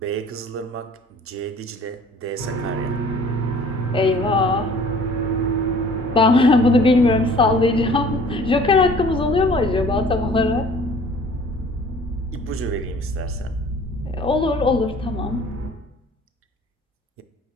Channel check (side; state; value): both; normal; correlation 0.51